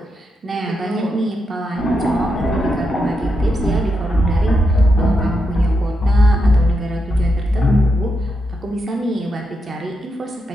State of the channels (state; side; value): normal; both; correlation 0.84